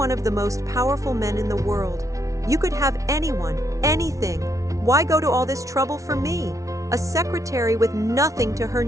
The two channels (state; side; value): late; left; 0.16 ms